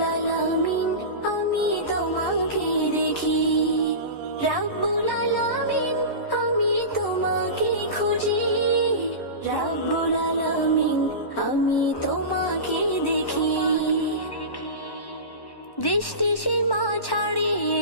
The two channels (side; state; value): right; late; 1.1 ms